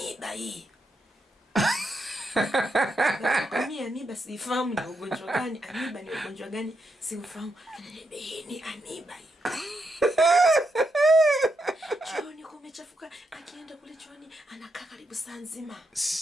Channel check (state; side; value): normal; both; correlation 0.82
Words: hii. Mimi amiba sifahamu ni ugonjwa gani, amiba ni ugonjwa gani sifahamu. Ananiambia hii ni amiba hii. Chooni kumechafuka, akienda kule chooni anakaa karibu saa nzima.